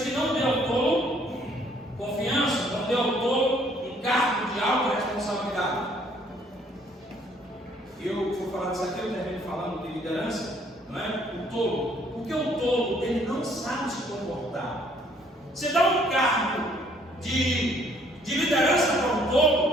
que não dê ao tolo confiança, não dê ao tolo um cargo de alta responsabilidade. Eu vou falar disso aqui, eu termino falando de liderança, não é? O tolo. Porque o tolo, ele não sabe se comportar. Você dá um cargo de liderança para um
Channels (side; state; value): both; normal; correlation 0.63